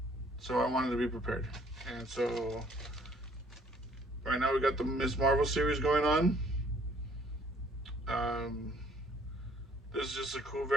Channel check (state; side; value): normal; both; correlation 0.61